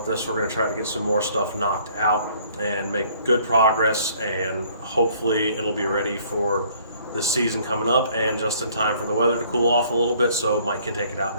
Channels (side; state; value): both; inverted; correlation -0.59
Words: this. We're going to try to get some more stuff knocked out and make good progress, and hopefully it'll be ready for this season coming up and just in time for the weather to cool off a little bit so Mike can take it out